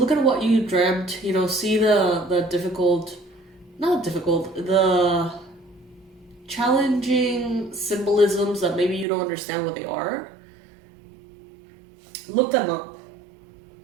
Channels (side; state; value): left; drops out; at 9.1 s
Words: at what you dreamt, you know, see the challenging symbolisms that maybe you don't understand what they are. Look them up.